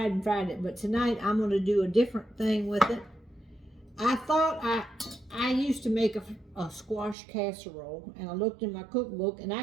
it. But tonight I'm going to do a different thing with it. I thought I used to make a squash casserole, and I looked in my cookbook and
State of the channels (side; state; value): left; drops out; at 7.2 s